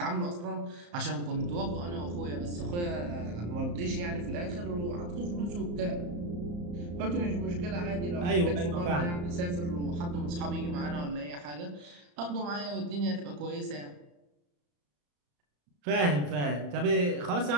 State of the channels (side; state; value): left; late; 34 ms